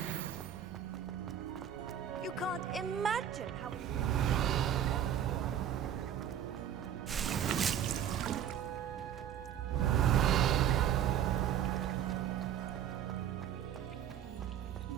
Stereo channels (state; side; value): quieter; left; 9.8 dB